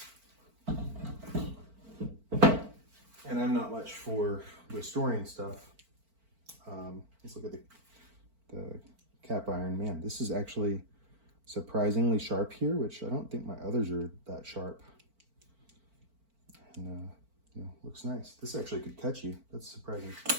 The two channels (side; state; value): left; late; 4.4 ms